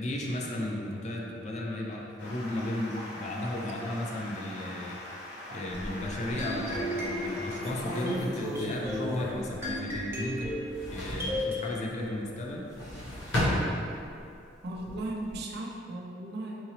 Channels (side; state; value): both; normal; correlation 0.62